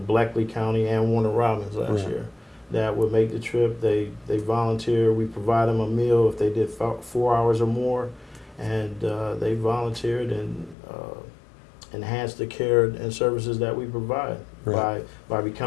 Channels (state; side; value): drops out; right; at 10.8 s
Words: Bleckley County and Warner Robins last year that would make the trip. They volunteer. We provide them a meal if they did 4 hours or more, and they volunteered and enhanced the care and services that we provide by